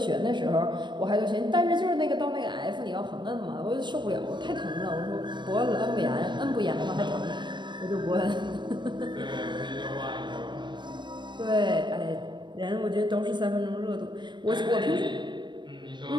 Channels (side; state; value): left; late; 0.22 ms